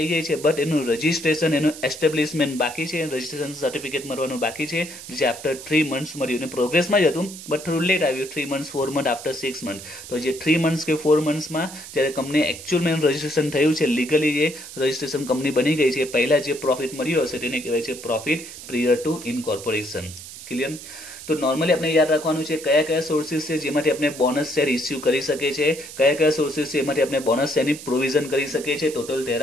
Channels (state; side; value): noise; right; hiss, 13 dB below the sound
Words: ગઈ છે બટ એનું રજીસ્ટ્રેશન, એનું એસ્ટેબ્લિશમેન્ટ બાકી છે, રજીસ્ટ્રેશન સર્ટિફિકેટ મળવાનું બાકી છે, જે આફ્ટર 3 મંથ્સ મળ્યું. અને પ્રોગ્રેસમાં જ હતું બટ થોડું લેટ આવ્યું, 3 મંથ્સ 4 મંથ આફ્ટર 6 મંથ. તો જે 3 મંથ્સ કે 4 મંથ્સમાં જ્યારે કંપની એકચ્યુઅલમાં રજીસ્ટ્રેશન થયું છે, લીગલી જે રજીસ્ટ્રેશન કંપની બની ગઈ છે, પહેલા જે પ્રોફિટ મળ્યો હશે તેને કહેવાય છે પ્રોફિટ પ્રિયર ટુ ઇનકોર્પોરેશન. ક્લિયર? તો નોર્મલી આપણે યાદ રાખવાનું છે કયા કયા સોર્સિસ છે જેમાંથી આપણે બોનસ શેર ઇસ્યુ કરી શકીએ છીએ, કયા કયા સોર્સિસ છે એમાંથી આપણે બોનસ શેરની પ્રોવિઝન કરી શકીએ છીએ. Total